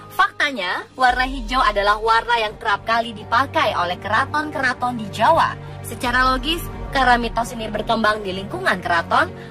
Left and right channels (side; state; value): both; identical; correlation 1.00